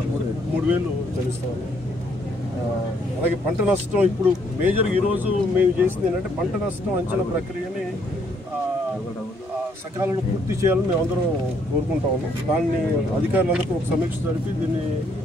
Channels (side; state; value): both; normal; correlation 0.69